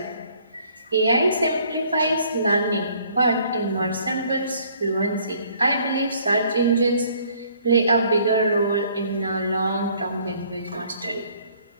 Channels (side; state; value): both; inverted; correlation -0.60